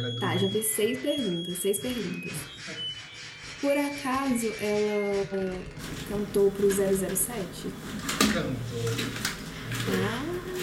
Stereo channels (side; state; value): both; identical; correlation 1.00